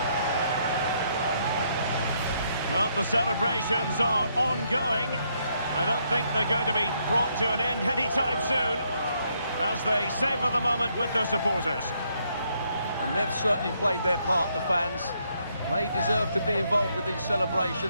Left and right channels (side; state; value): both; inverted; correlation -0.74